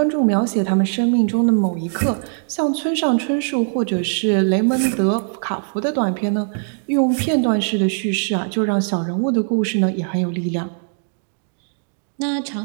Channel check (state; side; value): silent; left; digital silence